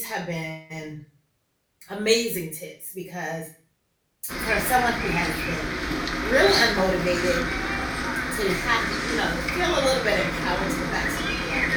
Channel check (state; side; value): identical; both; correlation 1.00